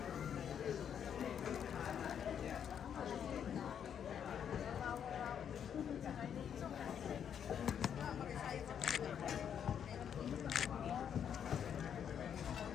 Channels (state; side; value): quieter; right; 8.4 dB